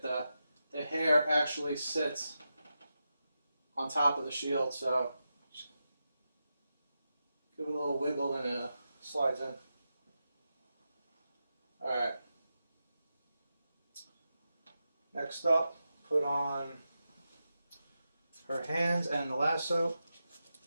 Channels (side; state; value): both; inverted; correlation -0.90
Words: The hair actually sits on top of the shield, so just give it a little wiggle and it slides in. Alright. Next up, put on her hands and the lasso.